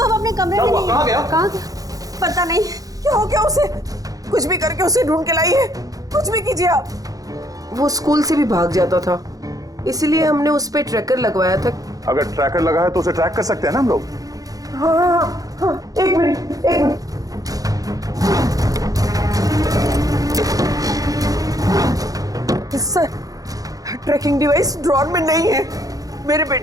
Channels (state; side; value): late; left; 0.17 ms